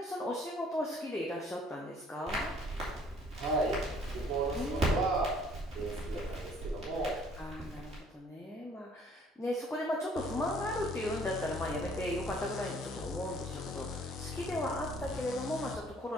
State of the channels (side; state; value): both; normal; correlation 0.59